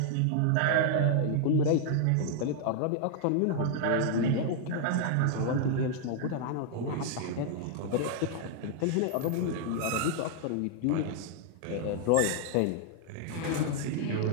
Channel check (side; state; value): both; different; correlation 0.00